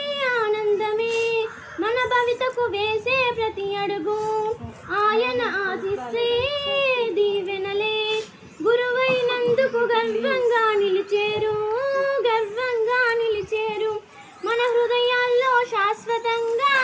ఆనందమే. మన భవితకు వేసే ప్రతి అడుగు ఆయన ఆశిస్సే దీవెనలే. గురువైనందుకు గర్వంగా నిలిచేరు, గర్వంగా నిలిచేరు. మన హృదయాల్లో శాశ్వతంగా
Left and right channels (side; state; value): both; identical; correlation 1.00